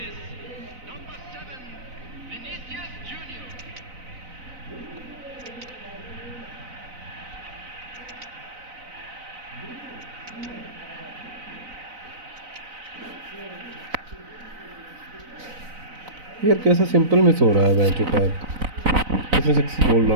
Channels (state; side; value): late; left; 4.0 ms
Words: यार कैसा सिंपल मिस हो रहा है मैच का. इसमें 6 गोल